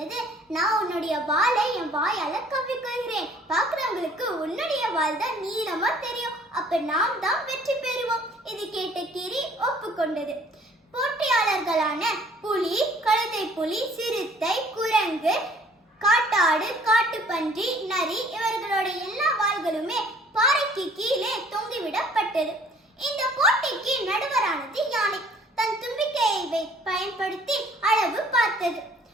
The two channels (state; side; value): normal; both; correlation 0.56